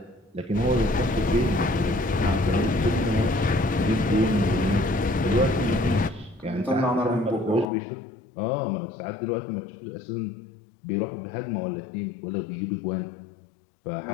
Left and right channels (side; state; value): right; drops out; at 7.7 s